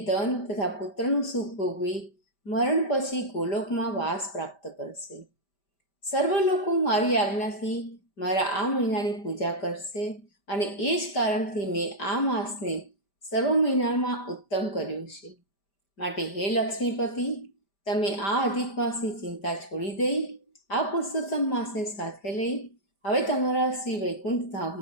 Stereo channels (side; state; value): right; late; 5.1 ms